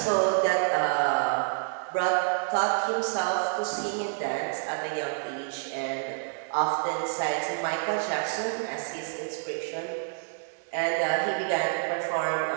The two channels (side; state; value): left; silent; digital silence